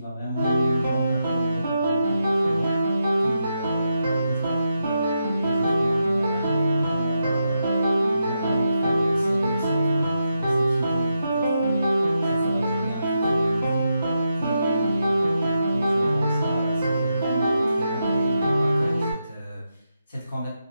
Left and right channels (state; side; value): inverted; both; correlation -0.84